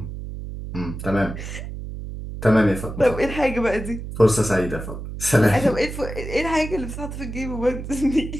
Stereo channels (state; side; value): noise; right; hum, 8 dB below the sound